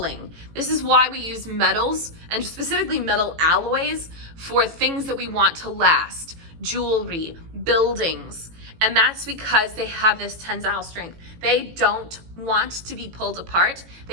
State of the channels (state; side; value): late; left; 18 ms